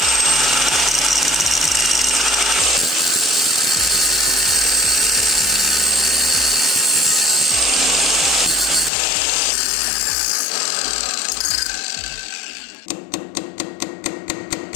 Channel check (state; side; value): drops out; right; at 8.9 s